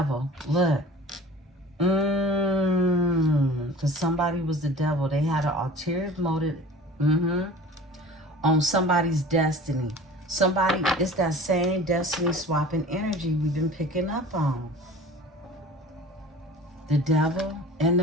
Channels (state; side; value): normal; both; correlation 0.42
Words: Look. Because somebody was the devil. They had an ulterior motive on somebody's destiny. Somebody, it's that same destiny swapping energy we've been picking up on. The devil and